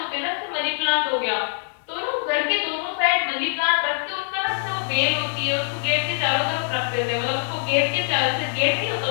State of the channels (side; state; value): right; silent; digital silence